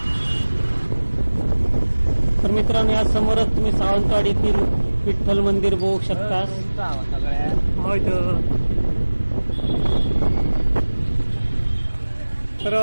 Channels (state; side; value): inverted; both; correlation -1.00